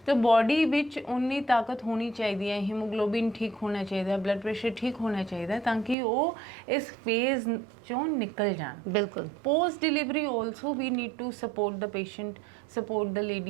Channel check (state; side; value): drops out; left; at 6.0 s